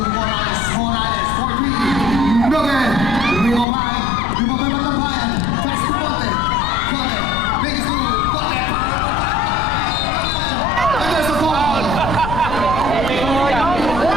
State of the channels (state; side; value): noise; left; rumble, 6 dB below the sound